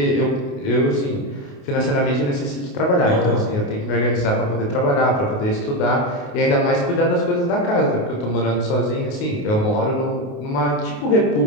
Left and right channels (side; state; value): right; late; 28 ms